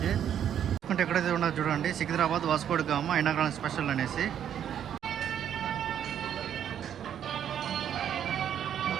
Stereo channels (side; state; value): left; quieter; 9.5 dB